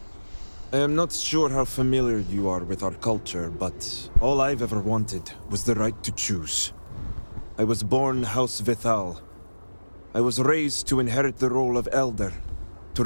I am not sure how familiar you are with our culture, but all I've ever wanted was the right to choose. I was born House Vithal. I was raised to inherit the role of Elder, to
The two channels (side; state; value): both; inverted; correlation -1.00